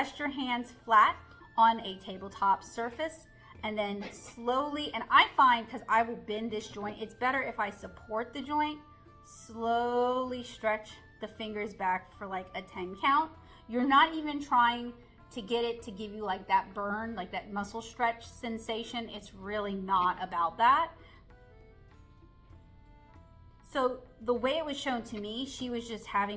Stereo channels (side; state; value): both; identical; correlation 1.00